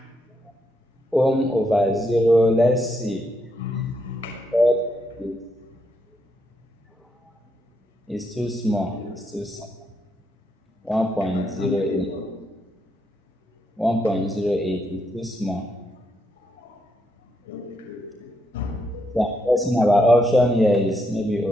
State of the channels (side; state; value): both; normal; correlation 0.78